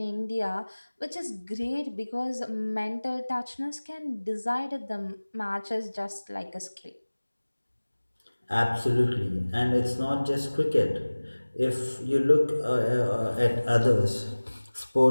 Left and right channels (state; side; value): inverted; both; correlation -1.00